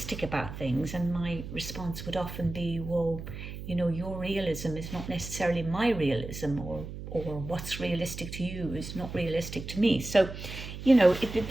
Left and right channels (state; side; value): noise; right; hum, 9 dB below the sound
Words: about things. And my response would often be, well, you know, your realism is not necessarily my realism, or what's realistic to you is not realistic to me. So, you know,